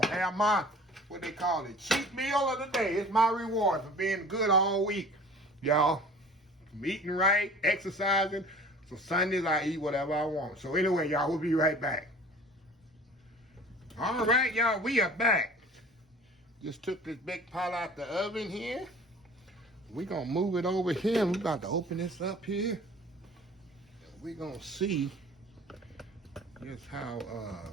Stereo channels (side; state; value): both; normal; correlation 0.45